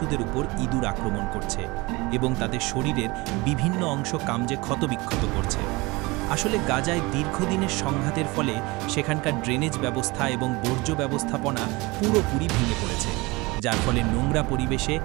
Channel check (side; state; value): left; quieter; 23.8 dB